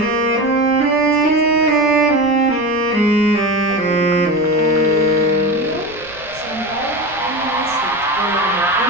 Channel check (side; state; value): right; noise; rumble, 22 dB below the sound